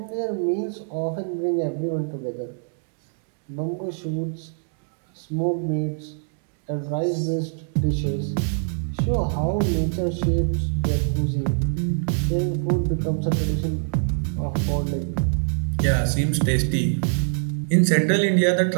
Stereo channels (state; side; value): silent; left; digital silence